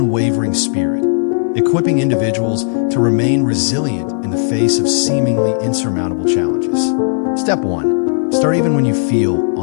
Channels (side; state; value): right; silent; digital silence